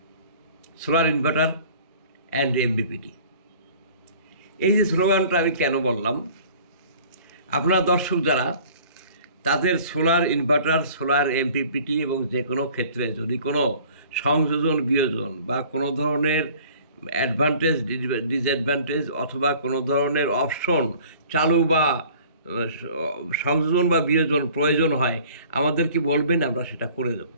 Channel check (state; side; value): inverted; both; correlation -0.50